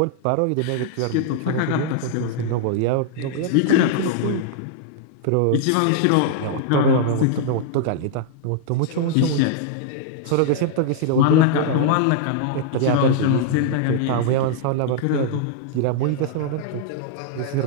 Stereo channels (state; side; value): different; both; correlation -0.01